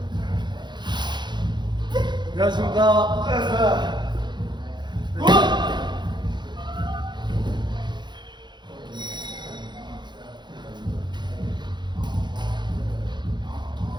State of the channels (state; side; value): late; left; 0.22 ms